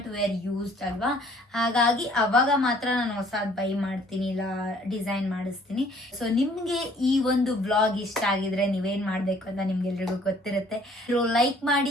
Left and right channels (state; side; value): normal; both; correlation 0.58